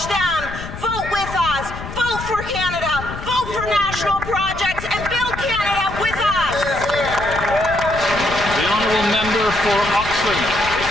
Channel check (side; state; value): left; noise; rumble, 10 dB below the sound